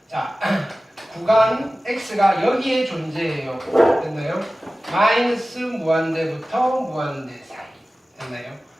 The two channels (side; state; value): both; normal; correlation 0.96